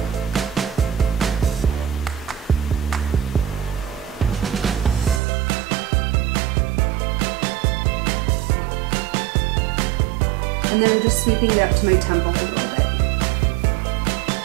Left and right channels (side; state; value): left; drops out; at 5.2 s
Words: And then I'm just sweeping it up to my temple a little bit.